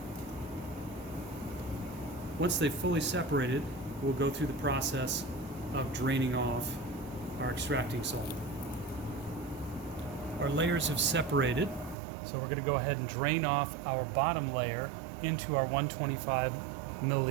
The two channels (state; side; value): drops out; left; at 12.0 s